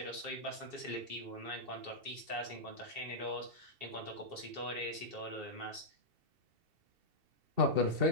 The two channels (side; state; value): left; late; 2.7 ms